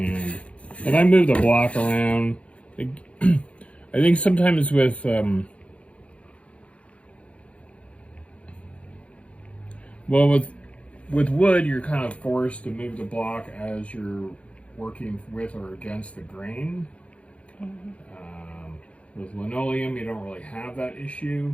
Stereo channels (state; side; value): late; right; 0.062 ms